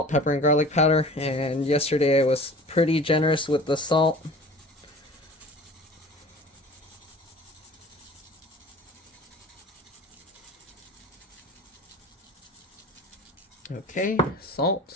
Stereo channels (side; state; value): both; normal; correlation 0.42